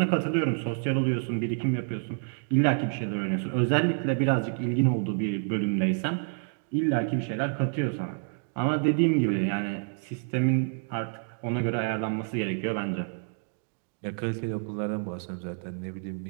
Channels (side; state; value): left; silent; 59 dB below the other